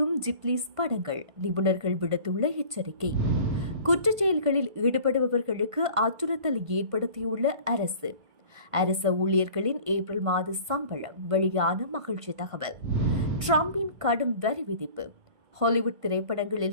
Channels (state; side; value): late; left; 1.5 ms